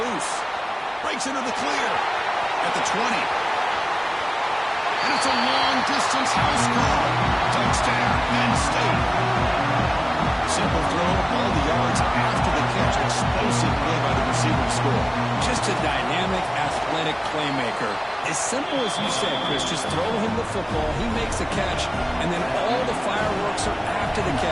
Breaks into the clear at the 20. And it's a long-distance house call. Touchdown, Penn State. Simple throw, all the yards after the catch. Explosive play by the receiver to score. Just a dynamic, athletic playmaker. As simple as you said, Chris, just throw him the football, he makes a catch, and then all the fireworks are after after the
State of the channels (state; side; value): identical; both; correlation 1.00